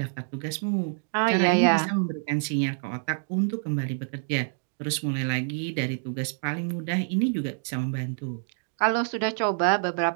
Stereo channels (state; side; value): silent; left; digital silence